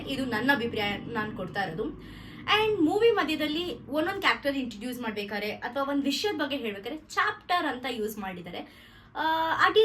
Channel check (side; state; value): both; identical; correlation 1.00